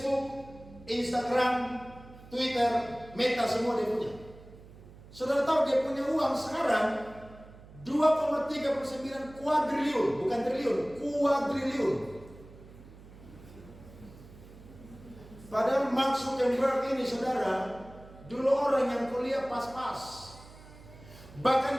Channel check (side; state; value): right; noise; hum, 19 dB below the sound